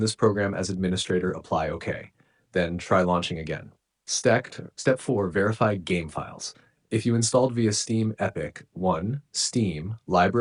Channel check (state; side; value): identical; both; correlation 1.00